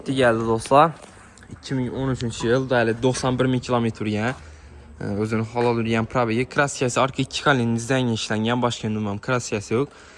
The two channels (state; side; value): identical; both; correlation 1.00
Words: gəldi dostlar. 2013-cü il, dəli 91 min kilometr yəni. Özünün halal yürüyən probegi. Kraskiyası arka 2 kalinizdən işlənən, başqa ünumam kraskiyası yox.